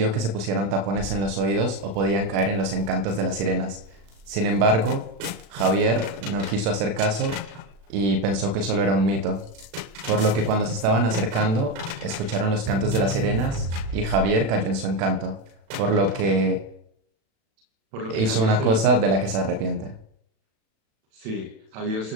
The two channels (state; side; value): late; left; 36 ms